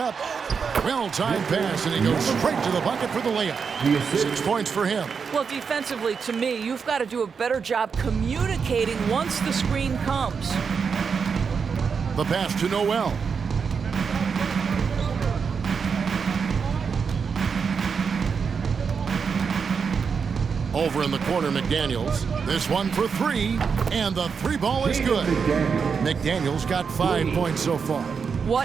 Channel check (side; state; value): left; quieter; 5.9 dB